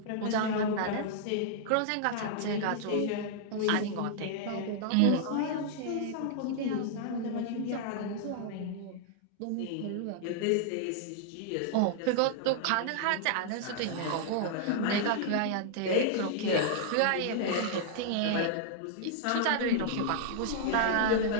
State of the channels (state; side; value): different; both; correlation -0.01